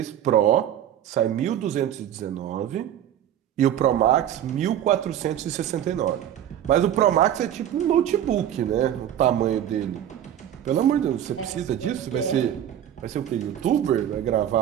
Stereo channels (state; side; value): quieter; left; 10.7 dB